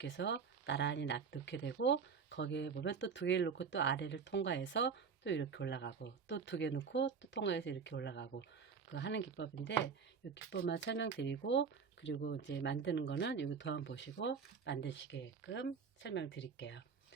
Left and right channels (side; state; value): left; quieter; 5.9 dB